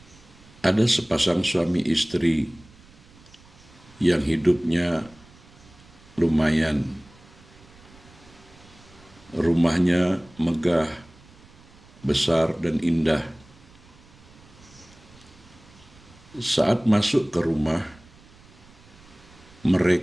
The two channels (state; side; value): noise; right; rumble, 25 dB below the sound